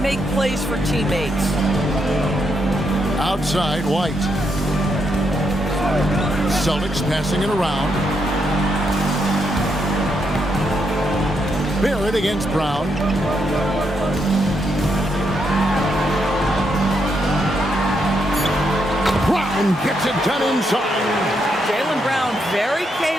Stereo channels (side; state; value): both; normal; correlation 0.79